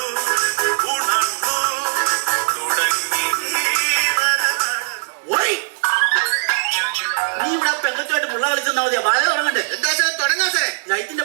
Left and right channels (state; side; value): silent; left; digital silence